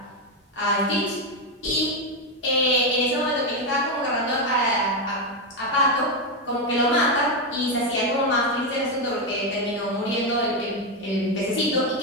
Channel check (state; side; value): normal; both; correlation 0.07